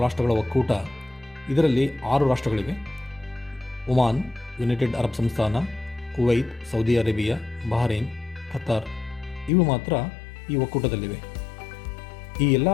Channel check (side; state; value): right; drops out; at 9.5 s